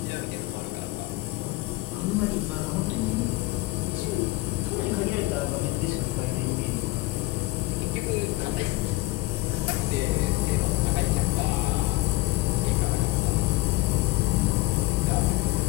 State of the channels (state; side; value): quieter; right; 19.3 dB